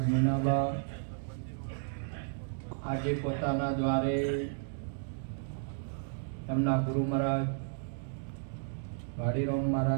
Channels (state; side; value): silent; left; digital silence